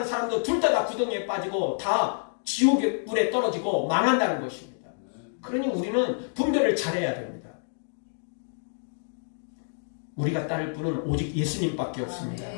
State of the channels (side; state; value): right; silent; digital silence